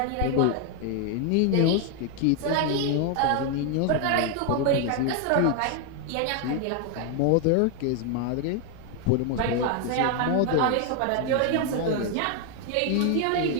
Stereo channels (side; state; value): both; different; correlation 0.00